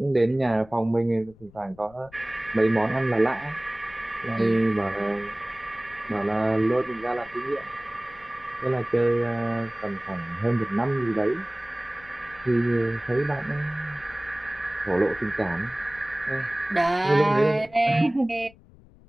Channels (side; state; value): left; noise; rumble, 24 dB below the sound